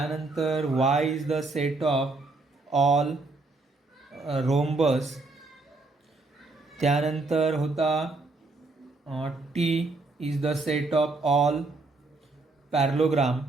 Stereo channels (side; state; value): left; quieter; 3.4 dB